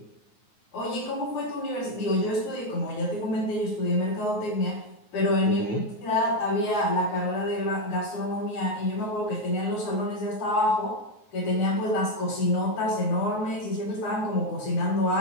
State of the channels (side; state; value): right; late; 9.4 ms